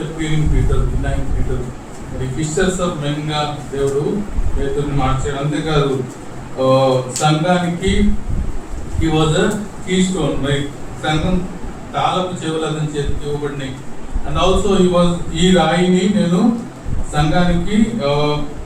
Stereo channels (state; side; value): identical; both; correlation 1.00